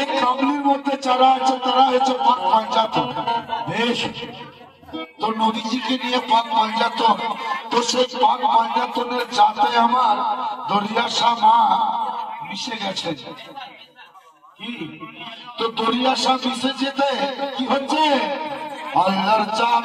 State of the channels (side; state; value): both; identical; correlation 1.00